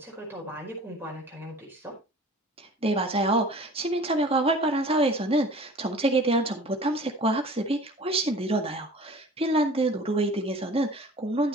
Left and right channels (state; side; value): normal; both; correlation 0.44